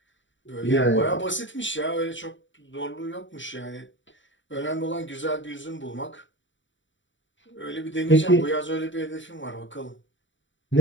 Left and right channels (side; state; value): right; late; 0.55 ms